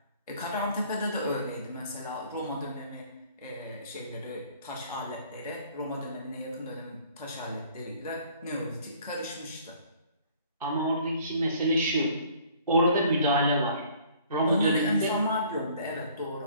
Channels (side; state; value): both; inverted; correlation -0.55